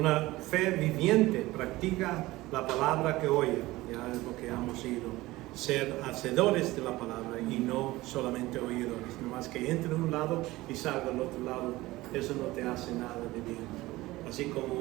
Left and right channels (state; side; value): quieter; left; 18.7 dB